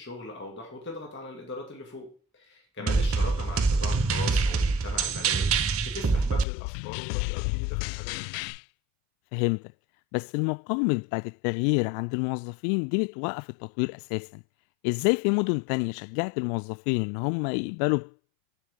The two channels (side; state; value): right; drops out; at 6.5 s